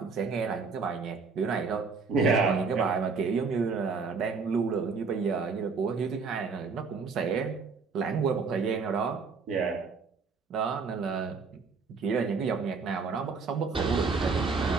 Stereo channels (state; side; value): quieter; left; 4.9 dB